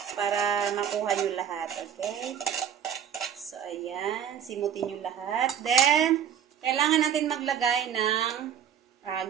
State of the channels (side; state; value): left; quieter; 8.8 dB